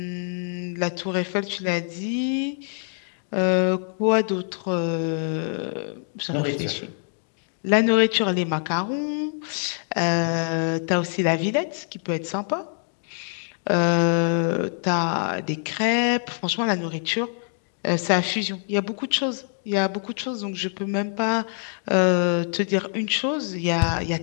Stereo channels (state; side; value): silent; right; 62 dB below the other